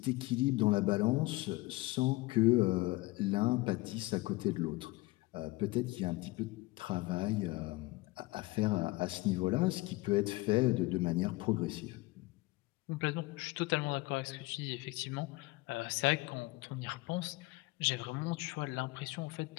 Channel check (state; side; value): quieter; right; 21.5 dB